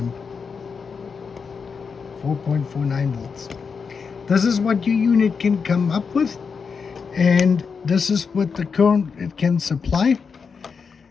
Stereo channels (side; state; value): right; quieter; 5.6 dB